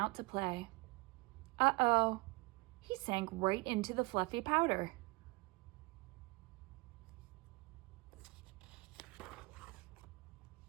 to play. Uh-oh, he sank right into the fluffy powder.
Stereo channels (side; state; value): left; quieter; 26.2 dB